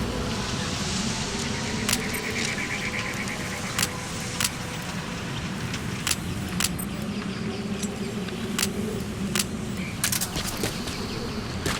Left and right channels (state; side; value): identical; both; correlation 1.00